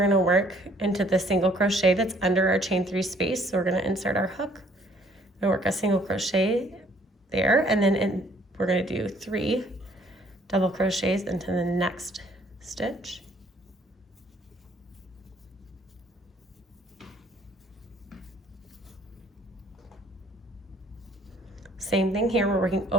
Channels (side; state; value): both; normal; correlation 0.61